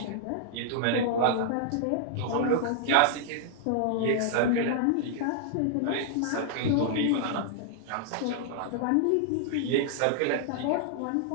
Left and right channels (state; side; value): different; both; correlation -0.01